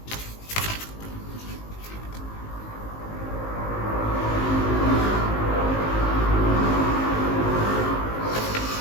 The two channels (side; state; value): right; late; 19 ms